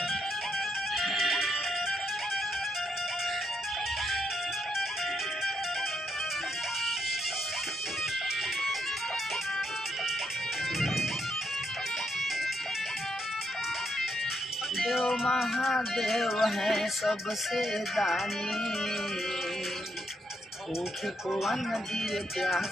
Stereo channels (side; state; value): both; normal; correlation 0.78